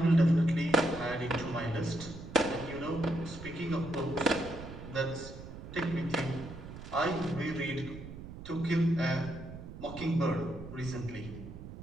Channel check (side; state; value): right; noise; rumble, 12 dB below the sound